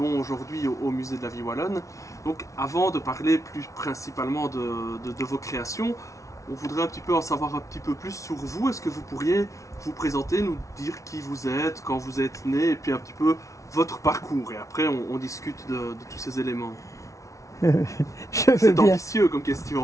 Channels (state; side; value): late; right; 0.15 ms